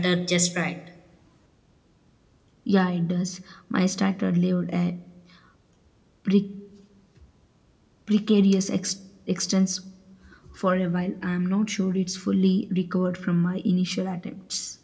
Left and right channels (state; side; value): identical; both; correlation 1.00